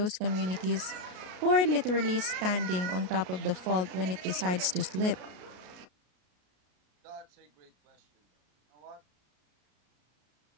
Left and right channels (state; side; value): late; left; 33 ms